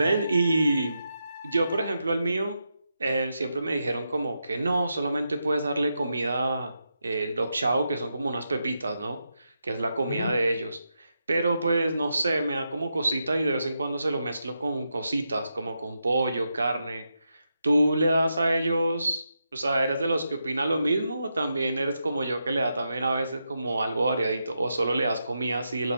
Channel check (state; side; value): inverted; both; correlation -0.85